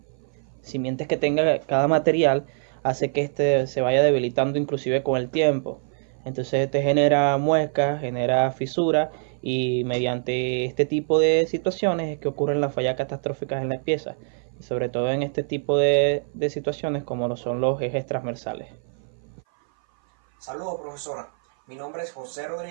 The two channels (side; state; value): left; silent; 58 dB below the other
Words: simientes que tenga cada material hace que este se vaya debilitando inclusive con el tiempo. Entonces este genera muescas, genera fisuras, y mediante este tipo de situaciones es que ocurren las fallas catastróficas en las piezas, y sobre todo en este tipo de situaciones como lo son los ejes transversales. Saludos, profesora. Mi nombre es José